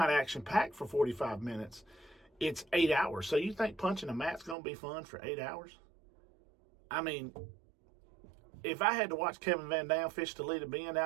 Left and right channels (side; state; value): left; drops out; at 4.5 s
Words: action-packed for 45 minutes. It's 8 hours. So you think punching a mat's going to be fun for 8 hours? I mean, if I had to watch Kevin Van Dam fish the lead of being